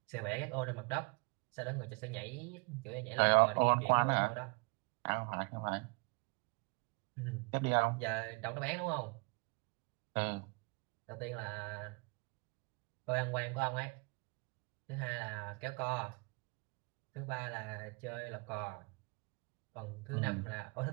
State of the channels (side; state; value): left; quieter; 30.8 dB